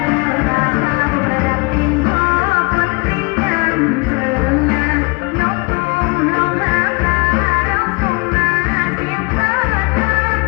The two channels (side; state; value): right; quieter; 29.1 dB